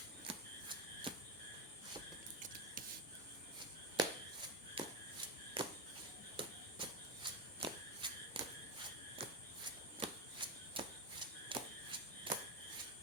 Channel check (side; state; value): both; normal; correlation 0.11